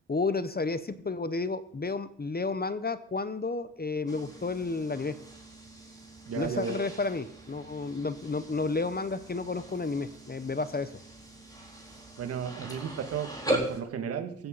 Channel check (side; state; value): both; normal; correlation 0.32